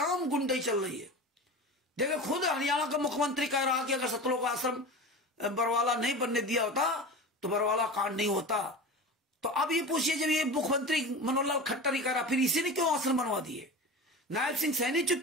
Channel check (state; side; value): normal; both; correlation 0.30